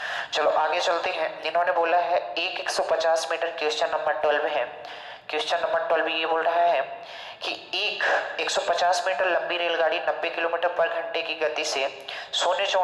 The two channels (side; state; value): both; identical; correlation 1.00